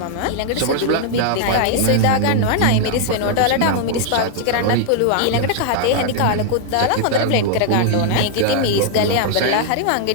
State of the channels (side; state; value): both; different; correlation 0.00